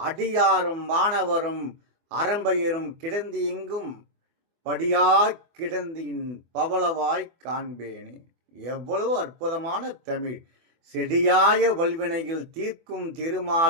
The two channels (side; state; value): left; late; 24 ms